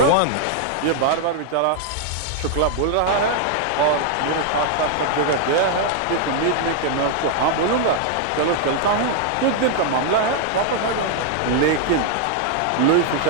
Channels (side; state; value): both; different; correlation 0.00